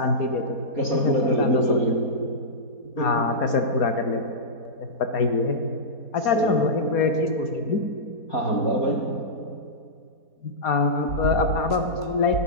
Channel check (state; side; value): late; right; 4.2 ms